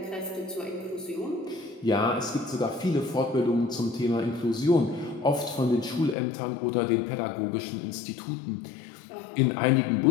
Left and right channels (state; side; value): drops out; right; at 6.2 s